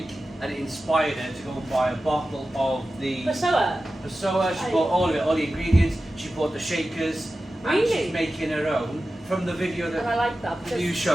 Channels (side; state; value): both; normal; correlation 0.94